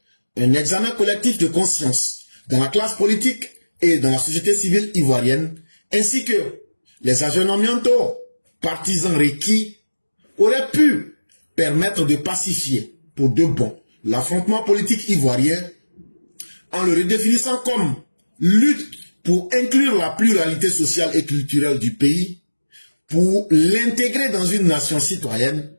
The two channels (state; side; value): inverted; both; correlation -1.00